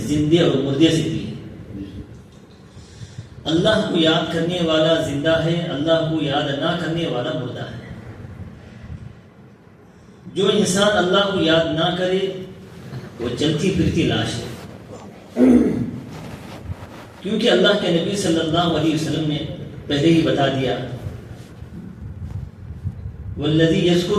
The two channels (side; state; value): both; identical; correlation 1.00